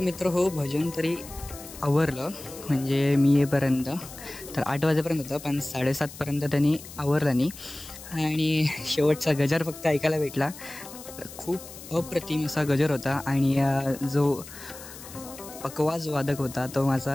मित्र हो भजन तरी आवरलं, म्हणजे मी येईपर्यंत तर 8 वाजेपर्यंत होतं, पण 7:30पर्यंत त्यांनी आवरलं नाही. आणि शेवटचा गजर फक्त ऐकायला भेटला. खूप अप्रतिम असा गजर होता. आणि जो पकवाज वादक होता तो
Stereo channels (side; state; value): left; noise; hiss, 15 dB below the sound